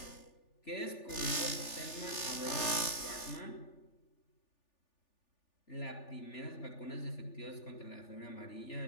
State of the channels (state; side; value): late; right; 3.4 ms